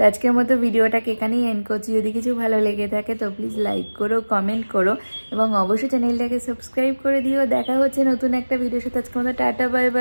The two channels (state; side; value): inverted; both; correlation -1.00